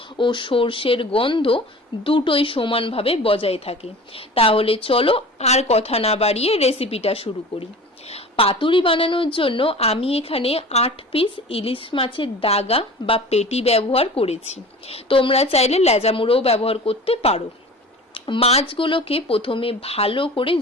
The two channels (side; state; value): both; normal; correlation 0.39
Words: ও সর্ষের গন্ধ দুটোই সমানভাবে বজায় থাকে। তাহলে চলো আর কথা না বাড়িয়ে রেসিপিটা শুরু করি। পাতুরি বানানোর জন্য আমি এখানে 8 পিস ইলিশ মাছের দাগা বা পেটি ব্যবহার করেছি। তোমরা চাইলে লেজামুড়োও ব্যবহার করতে পারো। মাছগুলোকে প্রথমে ভালো করে